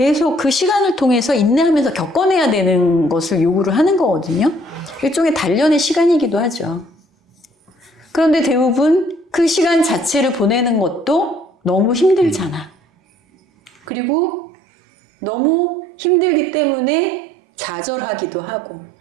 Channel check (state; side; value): drops out; left; at 13.7 s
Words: 그 시간을 통해서 인내하면서 겪어내야 되는 것을 요구를 하는 거거든요. 일종의 단련의 시간이기도 하죠. 그런데 대부분 그 시간 자체를 보내는 것도 너무 힘들잖아. 그리고 너무 힘들기 때문에 좌절하기도 하고